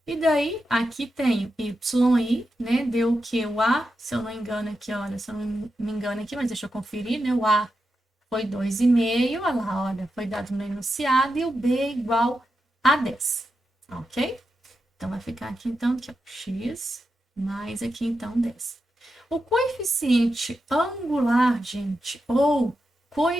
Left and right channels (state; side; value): normal; both; correlation 0.88